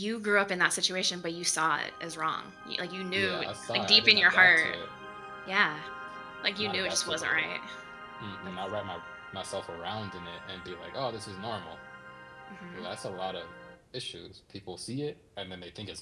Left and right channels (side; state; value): both; identical; correlation 1.00